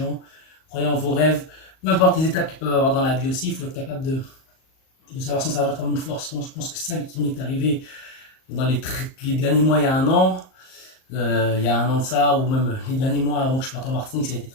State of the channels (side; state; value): right; late; 38 ms